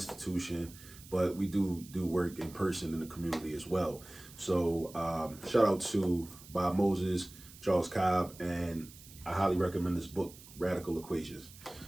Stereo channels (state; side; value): noise; right; hiss, 19 dB below the sound